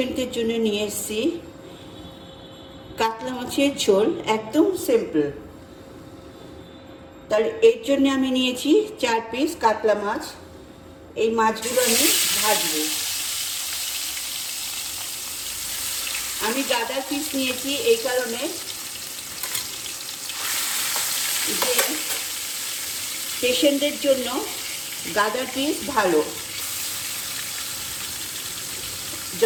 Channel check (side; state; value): both; identical; correlation 1.00